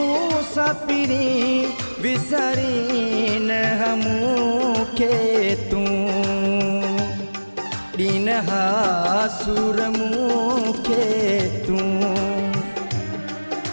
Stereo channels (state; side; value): inverted; both; correlation -1.00